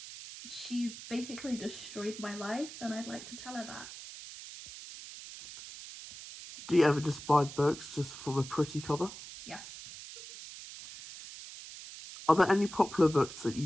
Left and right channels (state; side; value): noise; right; hiss, 13 dB below the sound